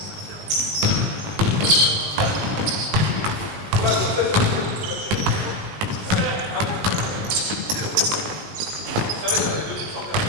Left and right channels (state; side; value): late; left; 19 ms